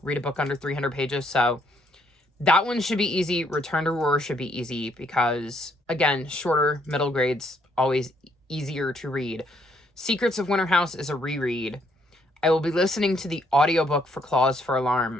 read a book under 300 pages. So that one should be easy. Return to Roar should be easy because, again, shorter, middle grades, always easier to read. Secrets of Winter House is a reread. I will be listening to the audiobook for Clause for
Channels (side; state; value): both; normal; correlation 0.70